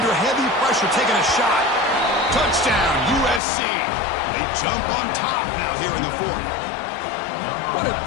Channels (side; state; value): right; drops out; at 3.4 s